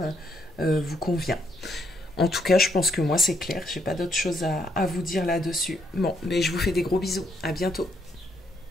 vous convient. En tout cas, je pense que moi c'est clair. J'ai pas d'autre chose à vous dire là-dessus. Bon, mais je vous fais des gros bisous. À bientôt.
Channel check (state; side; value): normal; both; correlation 0.73